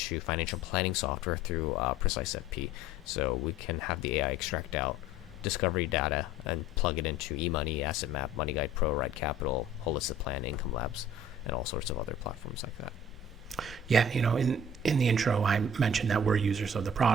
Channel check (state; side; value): normal; both; correlation 0.49